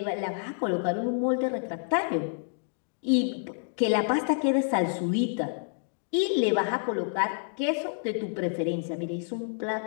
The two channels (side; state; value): right; silent; digital silence